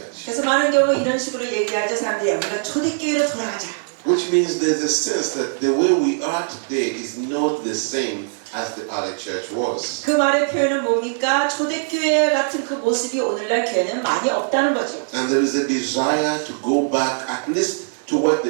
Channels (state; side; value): silent; left; digital silence